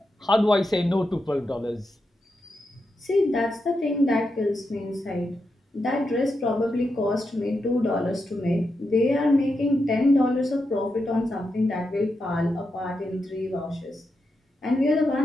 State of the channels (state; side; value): normal; both; correlation 0.86